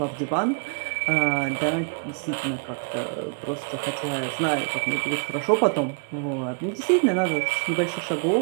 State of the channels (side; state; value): left; quieter; 38.4 dB